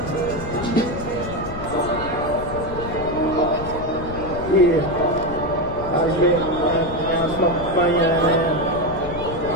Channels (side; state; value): left; noise; rumble, 11 dB below the sound